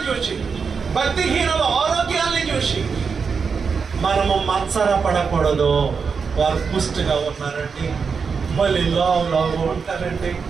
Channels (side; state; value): left; quieter; 5.6 dB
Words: చూచి, భక్తిహీనుల ఆరోగ్యాన్ని చూసి మనము మత్సరపడకూడదు. వారు పుష్టిగా ఉన్నారండి, భలే లావు ఉంటారండి,